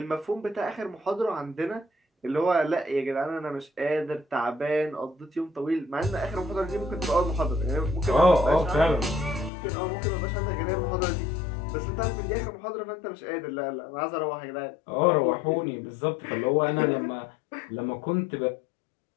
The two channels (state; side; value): drops out; right; at 9.5 s